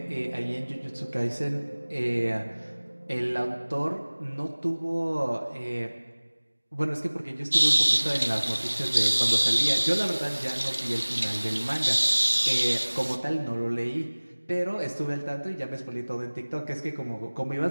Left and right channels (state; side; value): inverted; both; correlation -1.00